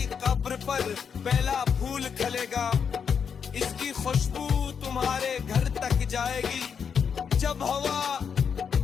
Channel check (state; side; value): quieter; right; 6.8 dB